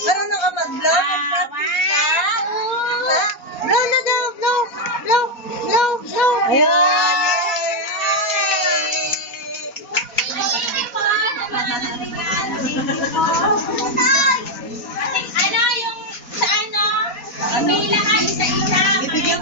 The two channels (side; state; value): right; late; 4.1 ms